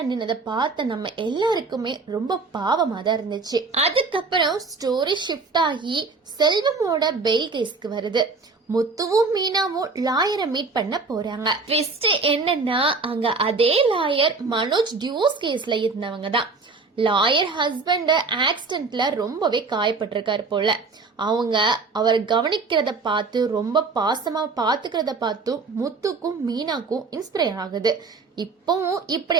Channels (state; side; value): quieter; left; 4.2 dB